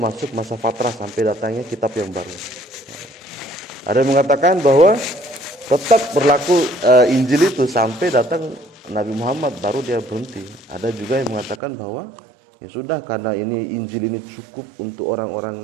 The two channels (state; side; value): drops out; left; at 11.6 s